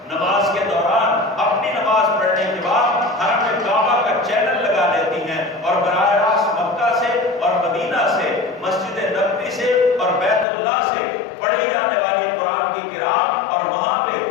نماز کے دوران اپنی نماز پڑھنے کے بعد حرم کعبہ کا چینل لگا لیتی ہیں اور براہ راست مکہ سے اور مدینہ سے، مسجد نبوی سے اور بیت اللہ سے پڑھی جانے والی قرآن کی قرات اور وہاں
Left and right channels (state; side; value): drops out; right; at 10.5 s